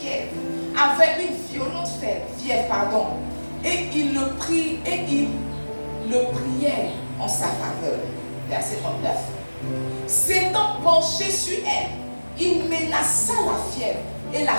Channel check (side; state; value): both; inverted; correlation -1.00